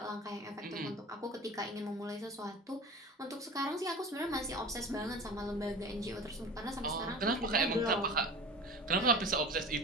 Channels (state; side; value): normal; both; correlation 0.35